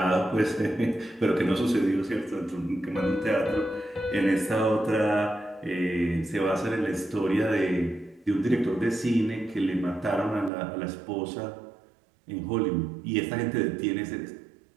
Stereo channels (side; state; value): left; drops out; at 10.5 s